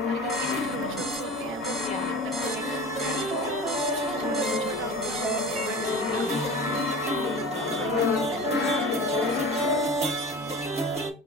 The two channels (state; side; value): normal; both; correlation 0.35